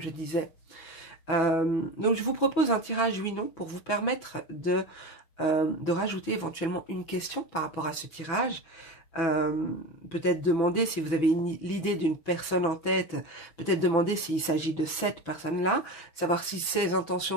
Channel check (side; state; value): right; late; 6.0 ms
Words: disais. Donc, je vous propose un tirage oui-non pour vous permettre de rajouter éventuellement une question par rapport à ce tirage. Peut-être demander si vous avez l'idée d'une personne en tête, peut-être demander s'il s'agit de cette personne-là, savoir si ses